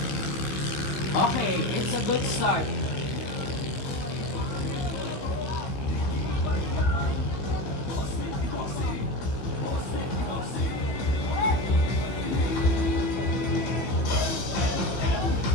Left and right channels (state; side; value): late; right; 15 ms